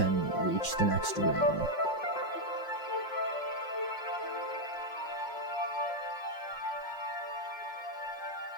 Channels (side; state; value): right; late; 5.5 ms